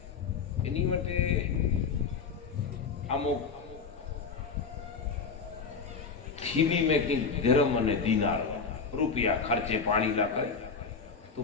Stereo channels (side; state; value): right; quieter; 5.3 dB